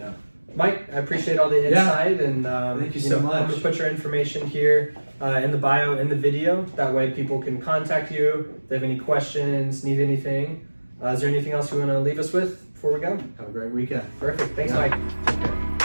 Yeah. Mike, I appreciate all the insight, and Thank you so much. I'm gonna put your information here in the bio in the video. That way, people can contact you if they have any questions, need anything. Is there anything else you want to leave us with before we go? Have a great weekend. Perfect. Thanks, Yeah. Mike. Take care.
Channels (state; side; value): inverted; both; correlation -1.00